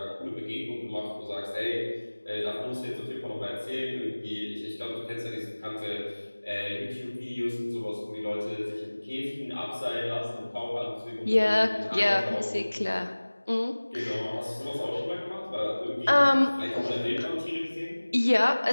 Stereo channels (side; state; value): both; inverted; correlation -1.00